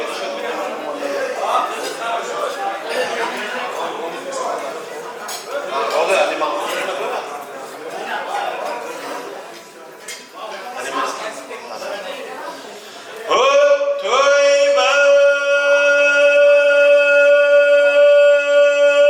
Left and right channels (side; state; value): both; identical; correlation 1.00